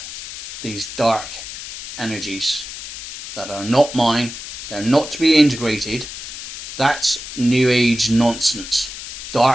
these dark energies that are not mine. They're not to be integrated. That's new age nonsense.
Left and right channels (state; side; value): noise; left; hiss, 10 dB below the sound